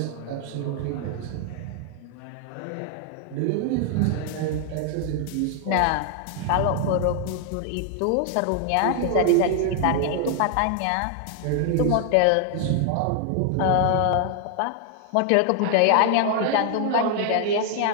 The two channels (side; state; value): both; different; correlation 0.00